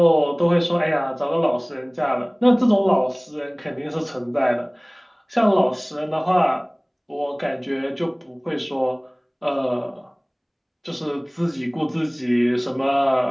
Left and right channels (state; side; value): identical; both; correlation 1.00